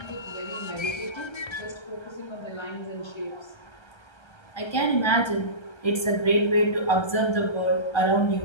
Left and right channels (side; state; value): right; late; 1.3 ms